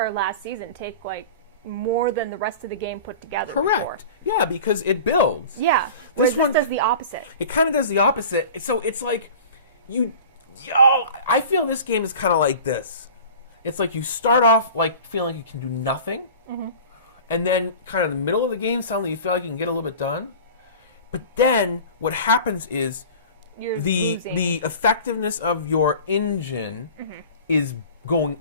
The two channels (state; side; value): inverted; both; correlation -0.39